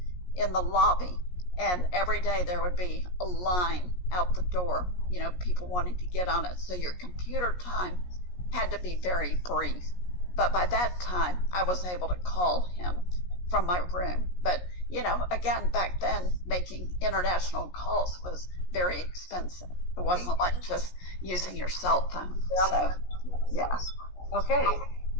in the lobby, and every day there would be a line out the door, people wanting to get on it. So your computer time had to be very brief. But by that time, I was able to call him from my room. But, again, back then, making international calls was very expensive. It wasn't like just using your cell phone. So, yeah. Okay.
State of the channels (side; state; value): right; late; 17 ms